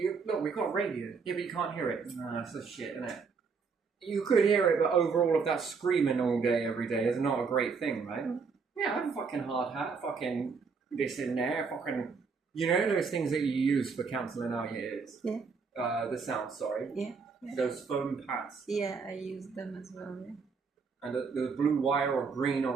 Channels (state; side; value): quieter; left; 5.2 dB